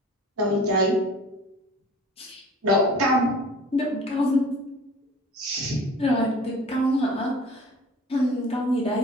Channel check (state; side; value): normal; both; correlation 0.44